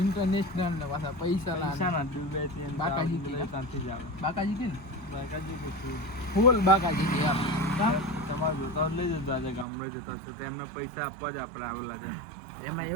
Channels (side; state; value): left; drops out; at 9.7 s